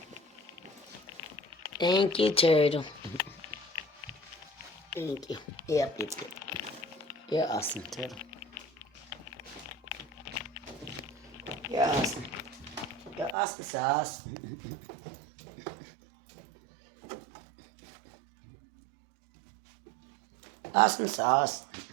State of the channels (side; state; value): left; drops out; at 13.4 s